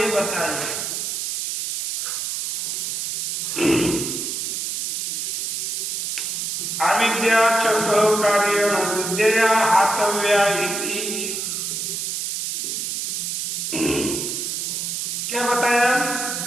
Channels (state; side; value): noise; right; hiss, 2 dB below the sound